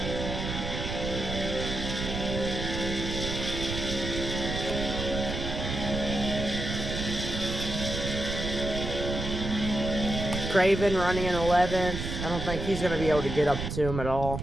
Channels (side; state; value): right; noise; rumble, 4 dB below the sound